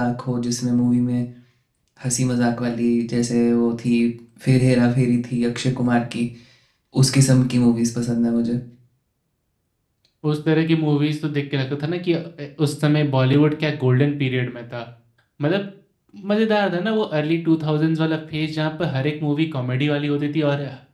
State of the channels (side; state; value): both; identical; correlation 1.00